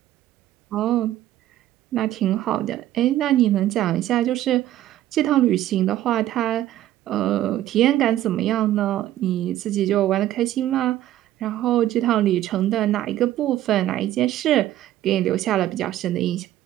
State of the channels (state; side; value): quieter; left; 13.4 dB